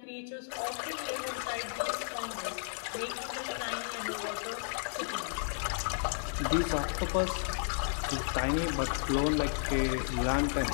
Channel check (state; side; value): silent; right; digital silence